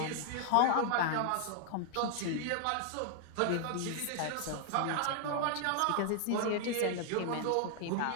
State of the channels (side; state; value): both; different; correlation 0.00